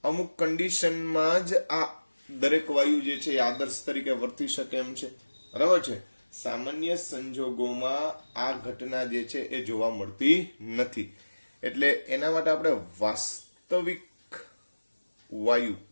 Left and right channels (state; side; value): inverted; both; correlation -1.00